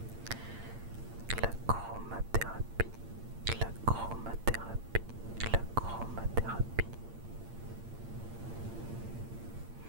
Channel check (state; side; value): late; left; 8.8 ms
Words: La chromathérapie, la chromathérapie, la chromathérapie.